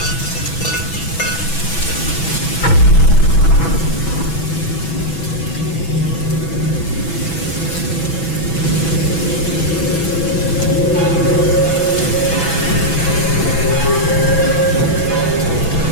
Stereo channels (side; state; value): right; late; 6.1 ms